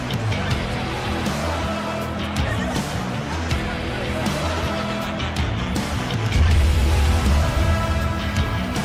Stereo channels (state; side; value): identical; both; correlation 1.00